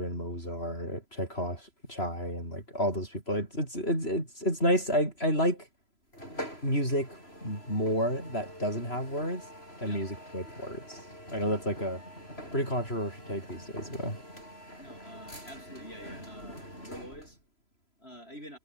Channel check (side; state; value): right; late; 3.0 ms